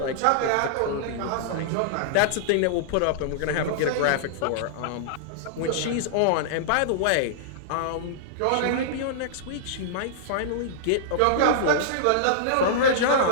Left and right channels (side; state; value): both; different; correlation -0.02